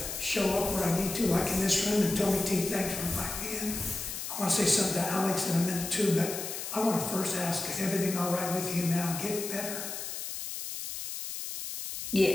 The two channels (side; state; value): left; noise; hiss, 6 dB below the sound